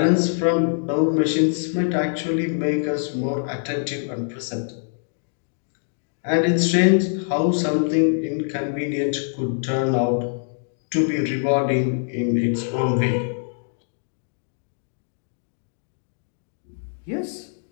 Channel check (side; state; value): right; silent; digital silence